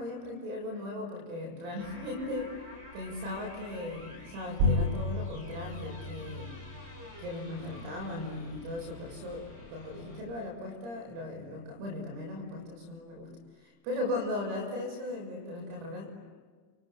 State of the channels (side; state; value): left; late; 30 ms